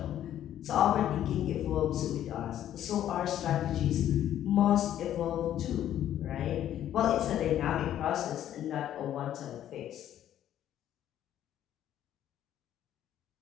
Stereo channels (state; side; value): quieter; right; 11.4 dB